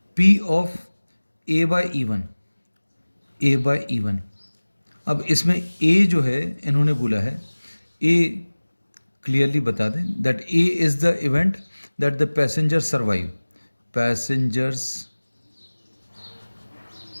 P of A by E1, A by E1. अब इसमें A जो है इन्होंने बोला है, A क्लियरली बता दें that A is the event that the passenger survive, passengers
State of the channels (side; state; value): both; inverted; correlation -1.00